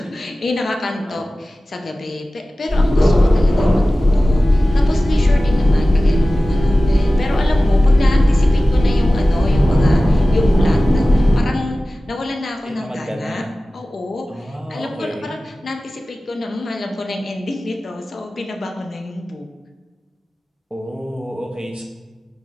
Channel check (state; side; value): normal; both; correlation 0.96